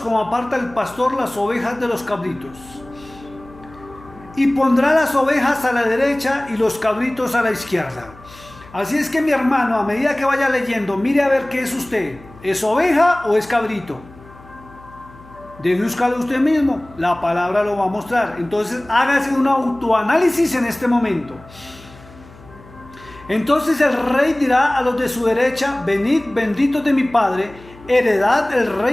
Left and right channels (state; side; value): noise; left; hum, 22 dB below the sound